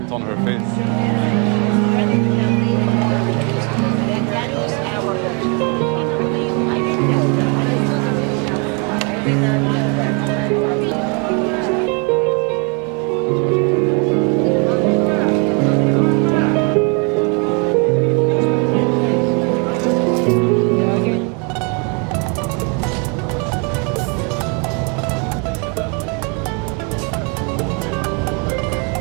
on her face.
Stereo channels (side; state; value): left; quieter; 34.5 dB